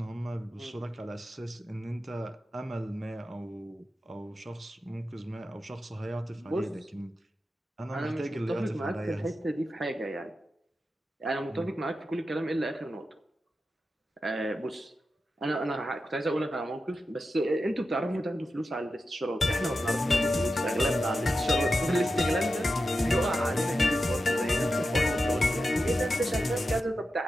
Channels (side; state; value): both; normal; correlation 0.91